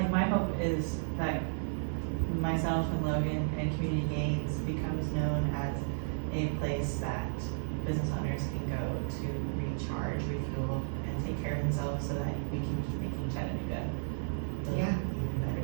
my hope is that myself and Logan and Community Gains becomes known as a place that business owners can go to recharge, refuel, and take care of themselves, so that we can keep making Chattanooga even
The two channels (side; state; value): left; silent; digital silence